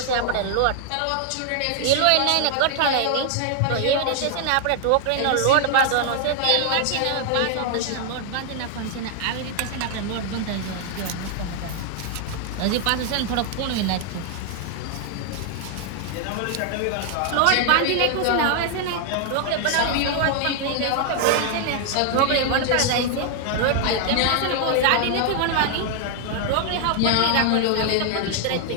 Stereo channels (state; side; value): different; both; correlation 0.00